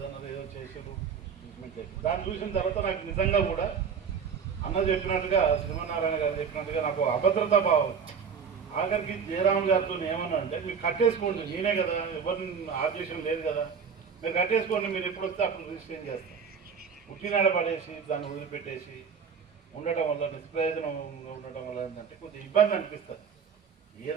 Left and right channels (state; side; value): quieter; left; 6.5 dB